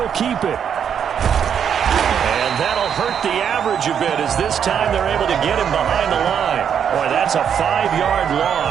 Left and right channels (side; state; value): left; quieter; 8.1 dB